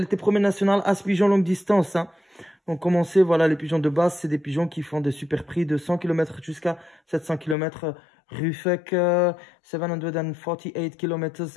était première nationale As-Pigeon longue distance. Hein. Donc, commencez, voilà, les pigeons de Bas, c'est des pigeons qui font des super prix de 100 km jusqu'à 700 km. Rufek, 748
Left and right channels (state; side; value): drops out; right; at 7.6 s